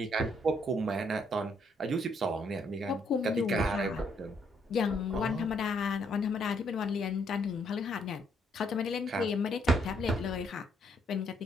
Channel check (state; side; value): normal; both; correlation 0.71